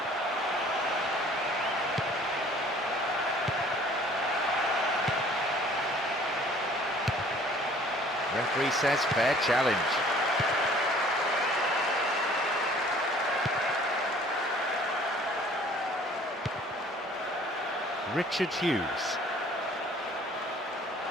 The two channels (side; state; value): both; normal; correlation 0.53